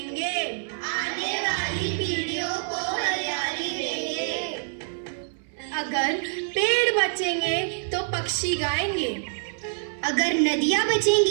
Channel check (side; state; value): left; silent; 61 dB below the other